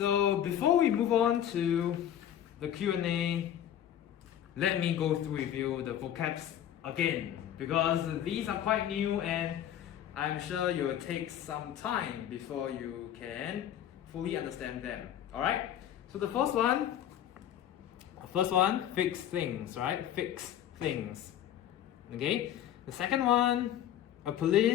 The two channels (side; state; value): right; quieter; 10.7 dB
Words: before we move on to the Q&A, let me go through with you the vocabs again, because these are quite new and I'm sure it will take some time before you can fully understand them. Alright? So the first one, fix things, right? Fix things. Okay? The second one, a